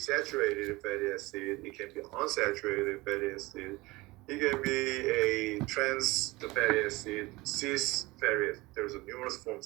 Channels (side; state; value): left; quieter; 21.7 dB